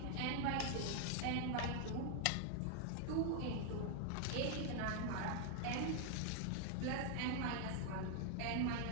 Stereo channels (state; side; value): different; both; correlation 0.00